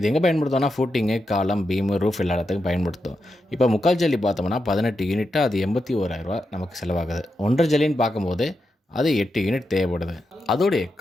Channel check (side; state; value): both; normal; correlation 0.87